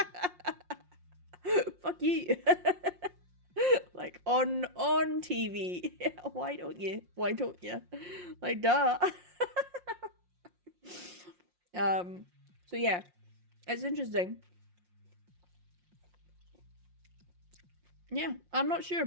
Fuck you. Like, on TV. Why don't you? Like, duh. So yeah, it's interesting. Yeah, I'm not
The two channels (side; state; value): left; late; 5.6 ms